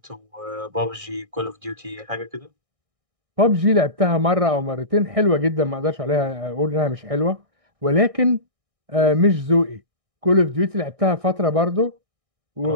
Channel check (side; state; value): left; late; 1.6 ms